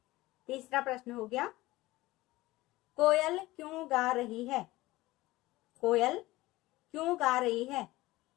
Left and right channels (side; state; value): right; quieter; 18.7 dB